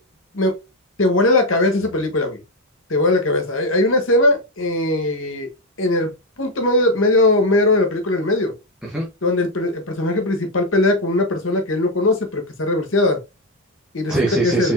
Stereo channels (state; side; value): normal; both; correlation 0.05